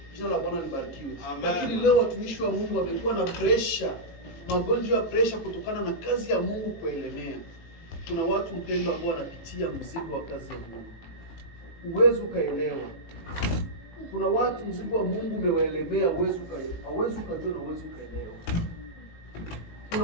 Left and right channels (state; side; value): late; right; 18 ms